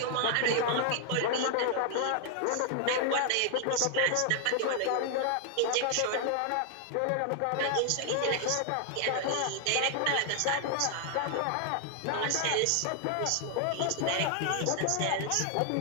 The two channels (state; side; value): different; both; correlation 0.00